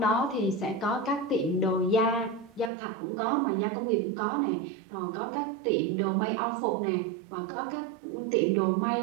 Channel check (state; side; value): drops out; left; at 2.7 s